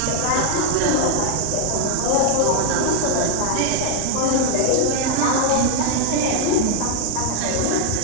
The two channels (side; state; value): both; different; correlation 0.00